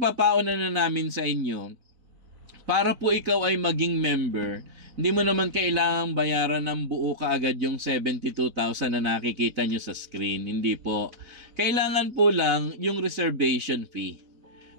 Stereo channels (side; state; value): left; late; 4.0 ms